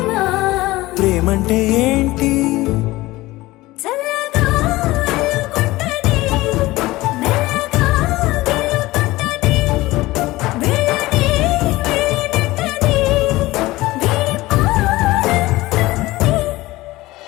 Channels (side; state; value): right; quieter; 19.0 dB